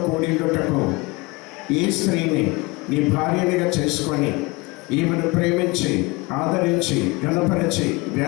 కూడిండుటకు ఈ స్త్రీని నీ భార్యనిగా చేసుకొని ఈమెను ప్రేమించి ఆదరించి గణపరిచి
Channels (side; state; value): right; quieter; 24.9 dB